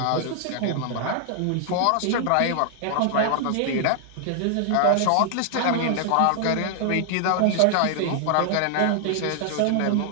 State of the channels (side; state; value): both; different; correlation 0.00